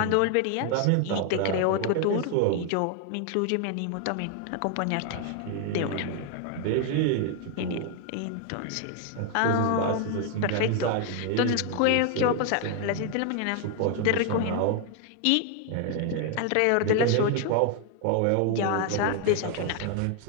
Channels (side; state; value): both; different; correlation 0.00